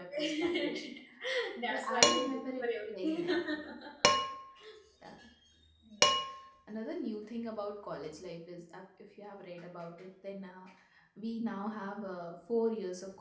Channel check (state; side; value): identical; both; correlation 1.00